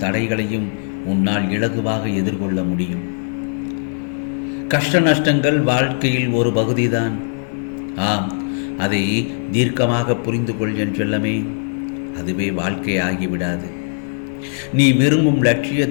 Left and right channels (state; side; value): silent; right; digital silence